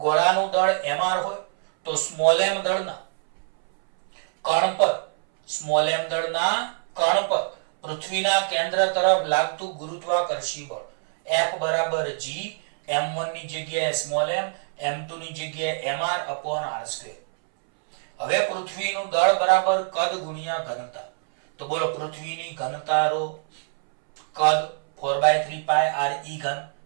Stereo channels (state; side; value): silent; left; 62 dB below the other